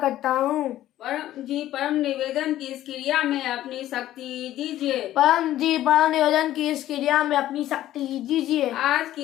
हूँ। परम जी, परम निवेदन की इस क्रिया में अपनी शक्ति दीजिए। परम जी, परम निवेदन की इस क्रिया में अपनी शक्ति दीजिए। आज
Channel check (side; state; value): right; quieter; 13.6 dB